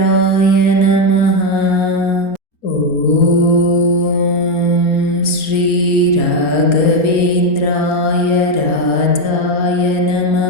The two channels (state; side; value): late; right; 4.3 ms